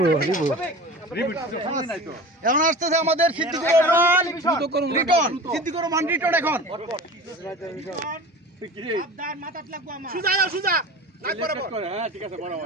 এখন আসতেছে আমাদের সিদ্দিকুর রহমান রিটন এখন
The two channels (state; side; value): normal; both; correlation 0.35